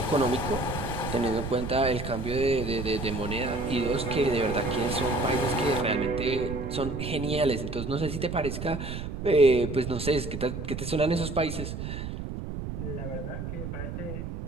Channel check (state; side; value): noise; right; rumble, 6 dB below the sound